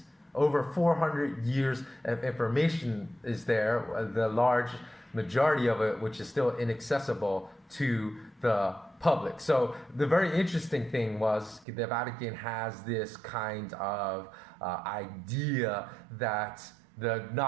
Over 400 years of information is there, the large majority of it which is still inaccessible to the public. So the very interesting thing was the Vatican has this kind of idea that the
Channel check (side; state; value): left; drops out; at 11.7 s